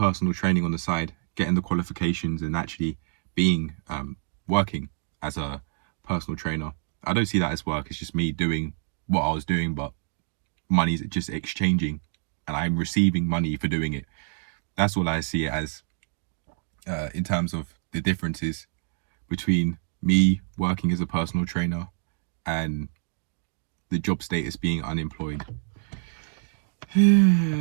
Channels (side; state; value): left; silent; digital silence